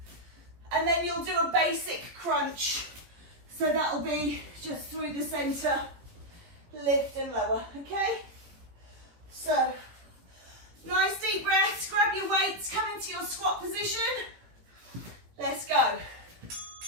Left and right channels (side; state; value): left; late; 17 ms